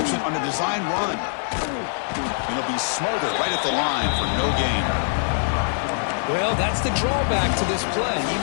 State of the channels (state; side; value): silent; right; digital silence